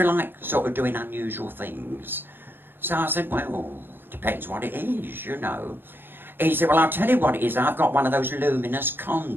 like sort of doing unusual things? So I said, well, depends what it is, you know. He said, well, I'll tell you what it is. I've got one of those luminous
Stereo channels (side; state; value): left; late; 0.098 ms